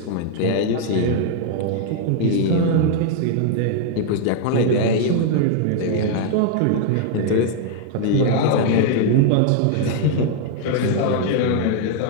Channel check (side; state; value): both; different; correlation 0.00